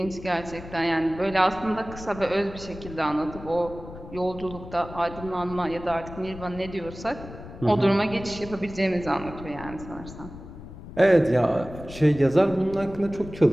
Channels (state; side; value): noise; left; rumble, 14 dB below the sound